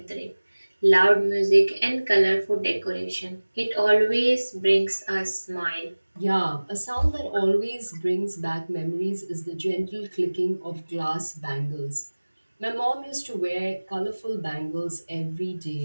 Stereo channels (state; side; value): inverted; both; correlation -1.00